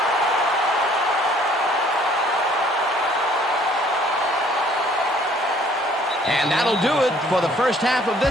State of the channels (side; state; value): both; normal; correlation 0.59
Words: And that'll do it for the first half of